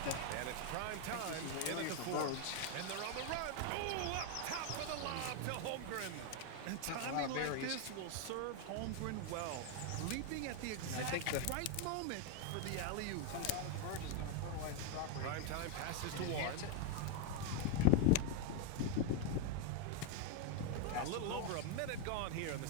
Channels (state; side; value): different; both; correlation 0.01